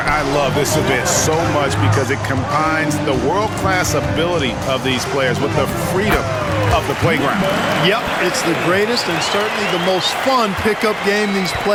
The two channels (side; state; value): both; identical; correlation 1.00